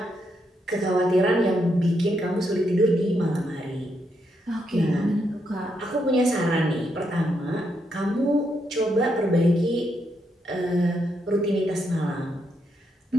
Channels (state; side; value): normal; both; correlation 0.79